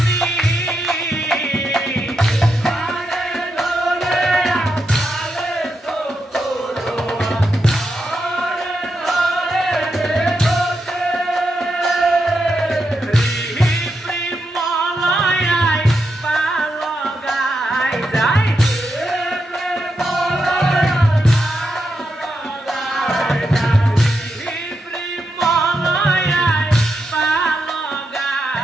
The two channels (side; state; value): both; normal; correlation 0.84